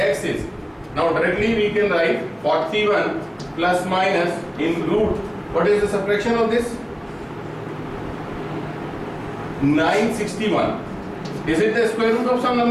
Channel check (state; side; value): identical; both; correlation 1.00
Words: is, now directly we can write 41 plus minus in root. What is the subtraction of this? 961. Is it the square root of some